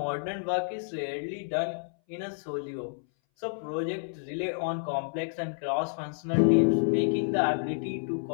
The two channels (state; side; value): silent; right; 58 dB below the other